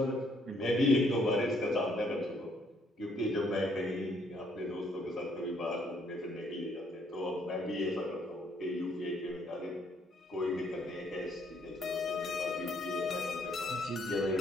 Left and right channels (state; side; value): normal; both; correlation 0.68